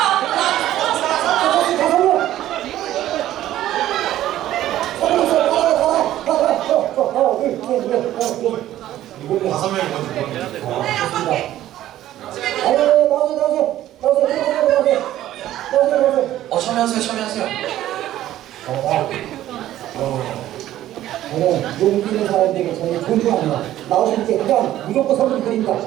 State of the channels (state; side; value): quieter; left; 13.4 dB